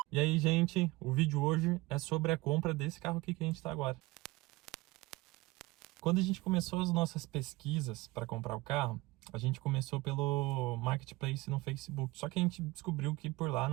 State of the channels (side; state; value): left; quieter; 20.9 dB